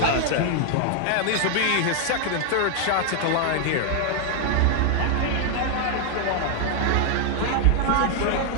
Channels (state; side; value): different; both; correlation 0.00